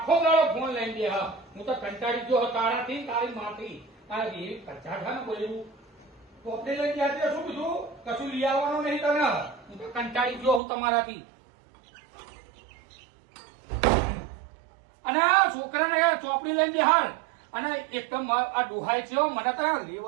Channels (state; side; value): drops out; left; at 10.6 s